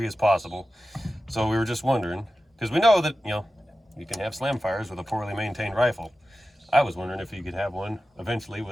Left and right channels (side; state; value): both; normal; correlation 0.93